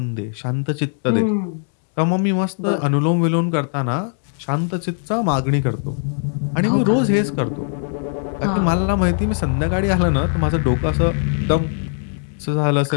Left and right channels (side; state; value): right; silent; 64 dB below the other